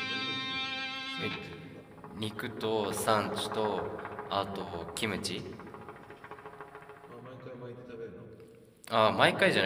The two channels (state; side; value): identical; both; correlation 1.00